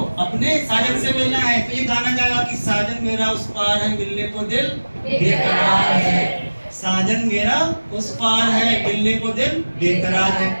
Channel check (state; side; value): inverted; both; correlation -1.00